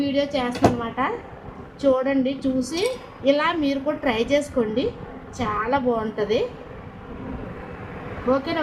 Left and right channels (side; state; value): both; identical; correlation 1.00